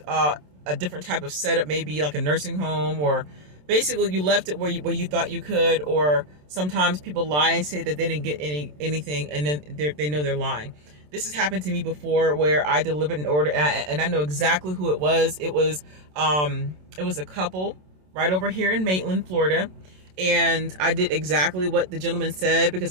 a different type of setup, maybe like a nursing home, or basically you left it where you thought you could. Or sometimes people lie and say that they didn't get anything, and then they know they're lying. This has happened to me before where I delivered an order and I know exactly who it was. It was a couple right over here in Maitland, Florida. And I did exactly what the gentleman said because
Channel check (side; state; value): left; late; 27 ms